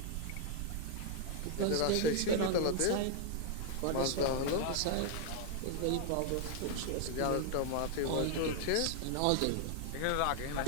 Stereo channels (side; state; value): both; different; correlation 0.00